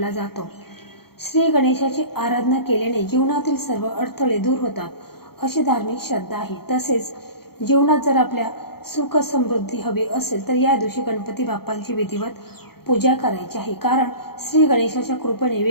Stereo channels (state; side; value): late; right; 0.95 ms